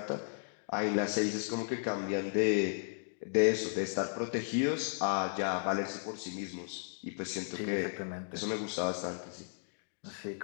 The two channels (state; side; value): silent; right; digital silence